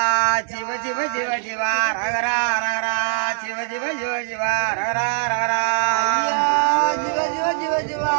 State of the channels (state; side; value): silent; left; digital silence